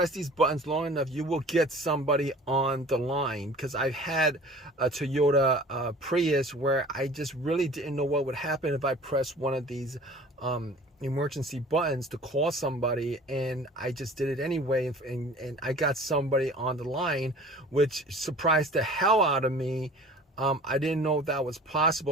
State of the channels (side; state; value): both; normal; correlation 0.45